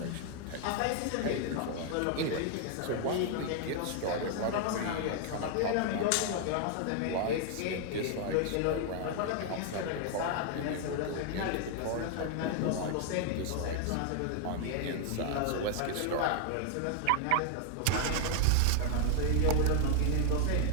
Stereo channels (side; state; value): both; different; correlation 0.00